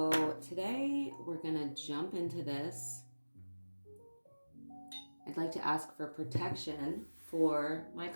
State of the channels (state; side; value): inverted; both; correlation -1.00